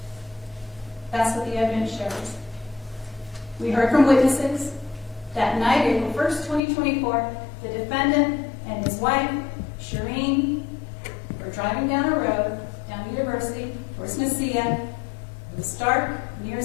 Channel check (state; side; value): drops out; right; at 6.6 s